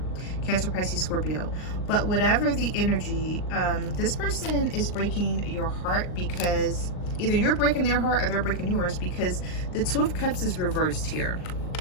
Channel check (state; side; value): late; right; 39 ms